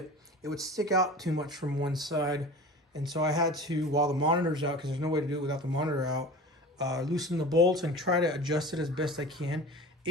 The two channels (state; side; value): normal; both; correlation 0.36